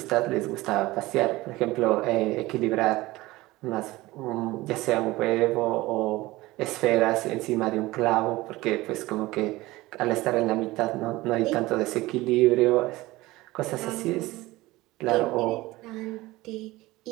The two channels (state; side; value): quieter; left; 19.3 dB